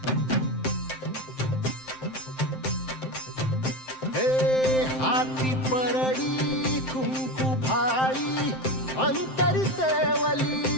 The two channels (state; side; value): late; right; 7.7 ms